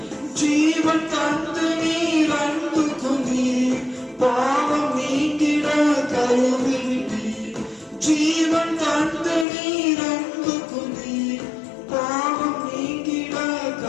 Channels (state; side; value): drops out; right; at 9.5 s